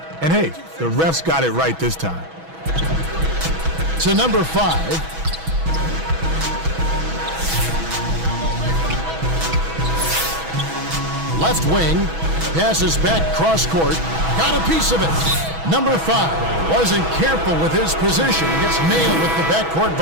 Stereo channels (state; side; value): late; left; 6.1 ms